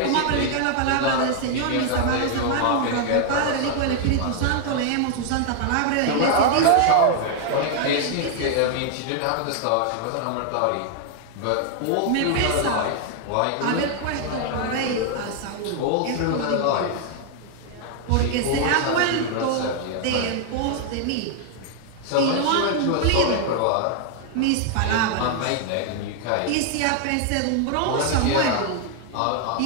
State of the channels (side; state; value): both; different; correlation 0.00